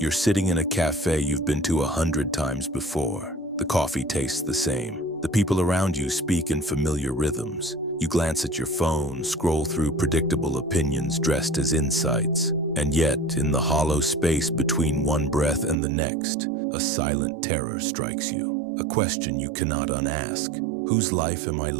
sitting in a cafe you've been to 100 times before. The coffee tastes the same. The people around you speak in familiar rhythms. You glance at your phone, scroll through predictable opinions dressed as insights. And yet, in the hollow space between one breath and the next, a silent terror strikes you. A question you cannot unask. Whose life am I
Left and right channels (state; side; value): drops out; left; at 15.8 s